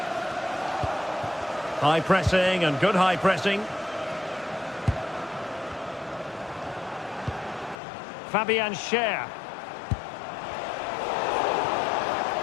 High pressing and good high pressing. Fabian Schär.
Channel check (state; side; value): drops out; right; at 7.8 s